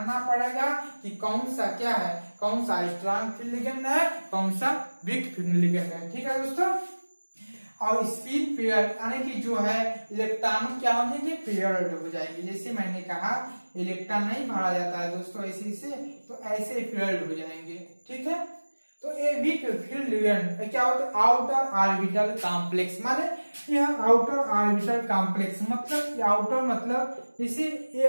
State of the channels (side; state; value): both; inverted; correlation -1.00